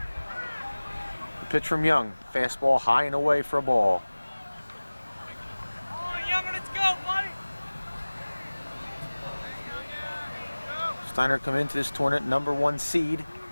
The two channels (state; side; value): inverted; both; correlation -1.00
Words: The pitch from Young. Fastball high and away for a ball. Steinert come into this tournament #1 seed.